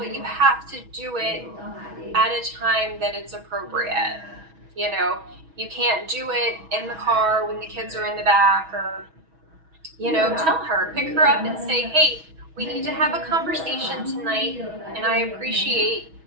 you have to do it at a time that it's appropriate. you know you can't do it in the car when the kids are in the back, or tell her, pick her up and say, hey, we need to have a conversation tonight, and I appreciate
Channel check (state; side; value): late; left; 6.2 ms